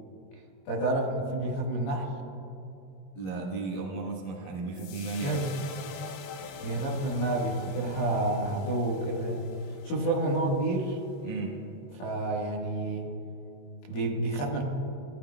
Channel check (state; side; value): late; right; 22 ms